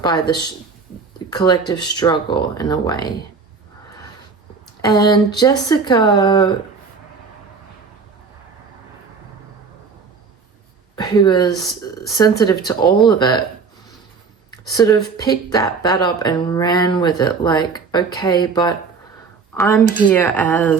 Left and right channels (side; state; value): left; quieter; 5.1 dB